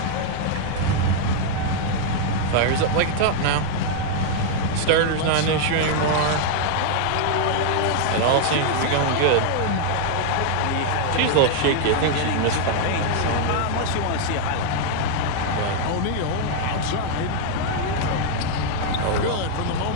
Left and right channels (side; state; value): both; different; correlation 0.00